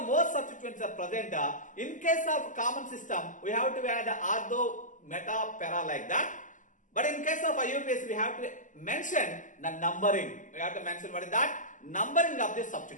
In case of common system, we have to add ortho, meta, para, like that. But in case of IUPAC, we have to mention the numbering. We have to mention what is that? Numbering of the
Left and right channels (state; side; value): late; right; 0.37 ms